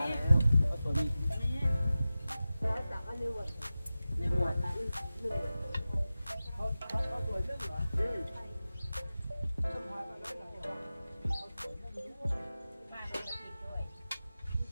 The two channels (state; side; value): inverted; both; correlation -0.95